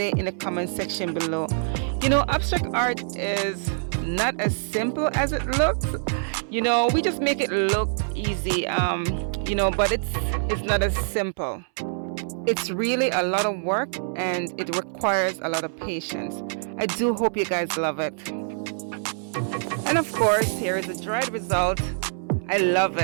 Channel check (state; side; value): silent; left; 62 dB below the other